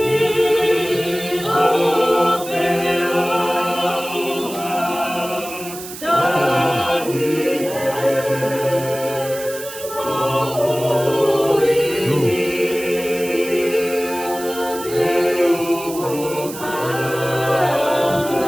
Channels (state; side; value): noise; right; hiss, 12 dB below the sound